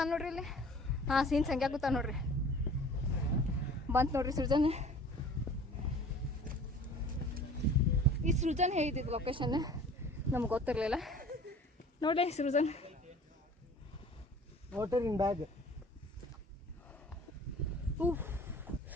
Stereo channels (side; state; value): both; normal; correlation 0.47